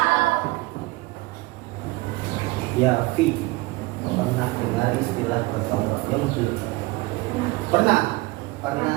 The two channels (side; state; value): left; quieter; 22.2 dB